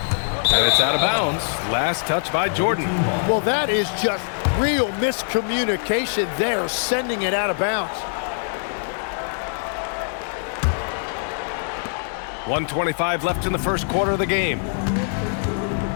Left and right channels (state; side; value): silent; right; digital silence